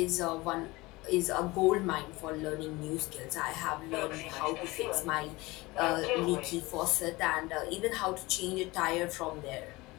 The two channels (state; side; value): quieter; right; 21.7 dB